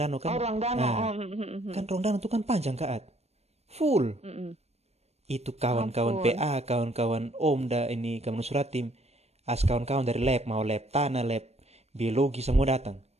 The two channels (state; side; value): late; left; 0.31 ms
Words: kan. Oh, ruang danau. Nah, kan ruang danau tuh kan panjang Kak. Full. Itu kawan-kawan Ampun. PA, kawan-kawan Om ini kawan Suratim, kawan-kawan dari lab, mau lab tanah, lab biologi semua datang.